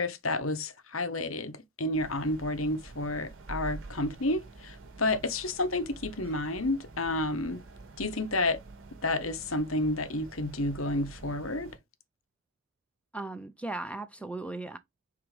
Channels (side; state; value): both; normal; correlation 0.02